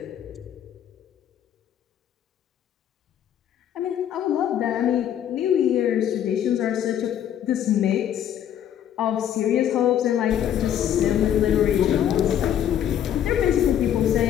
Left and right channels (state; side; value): quieter; right; 10.2 dB